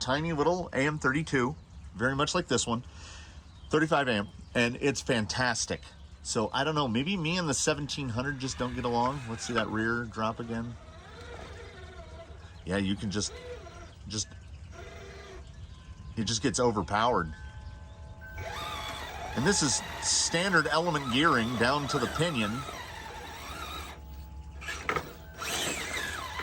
little AM32, very much like this one, 35 amp, and it's fantastic. So I don't know, maybe me and the 1700 just don't get along. Let's see that rear drop again. Yeah, you can just it just gets overpowered. And this is standard element gearing down to the pinion.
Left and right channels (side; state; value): both; identical; correlation 1.00